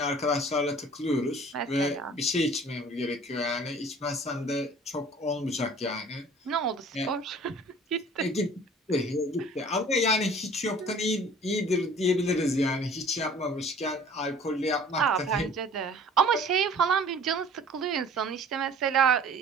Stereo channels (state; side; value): normal; both; correlation 0.49